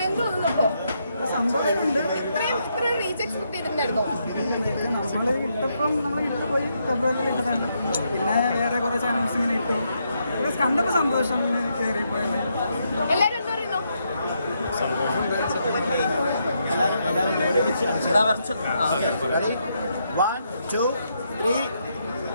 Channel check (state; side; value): inverted; both; correlation -0.79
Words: എന്ത് തോന്നുന്നപ്പോ? സന്തോഷമുണ്ട്. ഇത്രയും റീച്ച് എക്സ്പെക്ട് ചെയ്തിട്ടുണ്ടായിരുന്നോ? നമ്മൾ ഇട്ടപ്പം നമ്മൾ ഇട്ട് പോയി ഫെബ്രുവരിയിൽ ഇട്ടതാണ്. പിന്നെ വേറെ കുറേ ചാനൽസ് ഇങ്ങനെ ഇട്ടു. കണ്ടപ്പോൾ സന്തോഷം ഇങ്ങനെ കയറിപ്പോയി. എല്ലാവരും എന്താ പറയുന്നു?